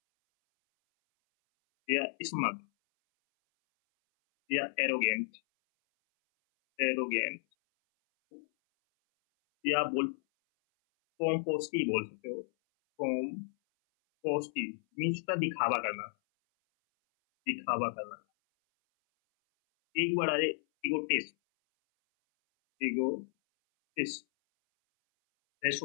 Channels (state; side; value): silent; right; 56 dB below the other